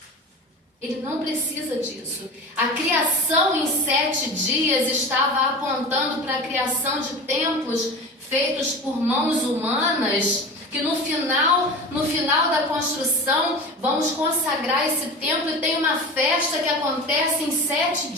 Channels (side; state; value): both; normal; correlation 0.32